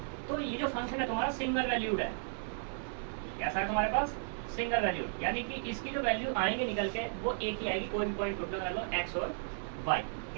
तो ये जो फंक्शन है तुम्हारा सिंगल वैल्यूड है। कैसा है तुम्हारे पास? सिंगल वैल्यूड, यानी कि इसकी जो वैल्यू आएंगे निकल के वो एक ही आएगी। कोई भी पॉइंट पुट कर लो, एक्स और वाई,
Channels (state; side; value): silent; left; 55 dB below the other